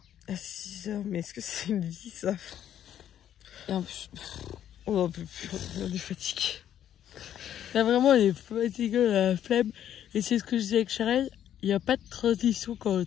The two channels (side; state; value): right; quieter; 10.5 dB